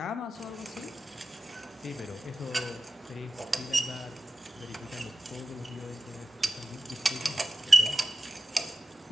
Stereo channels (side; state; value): both; normal; correlation 0.95